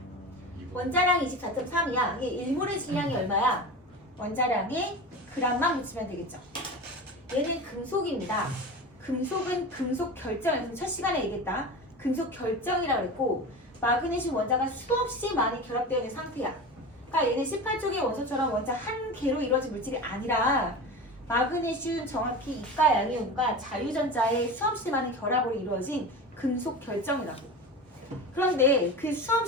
원자량이 24.3이야. 이게 1몰의 질량이 얼마야? 원자량에 g만 묻히면 되겠죠. 얘는 금속입니다. 금속은 금속 결정, 첫 시간에 얘기했다. 금속 결정이라고 그랬고 마그네슘 원자가 수없이 많이 결합되어 있는 상태야. 그러니까 얘는 18쪽의 원소처럼 원자 한 개로 이루어진 물질이 아니라 마그네슘 정확히 이가 양이온과 자유전자의 수없이 많은 결합으로 이루어진 금속 결정이라고. 그런데 그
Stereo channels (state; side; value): normal; both; correlation 0.29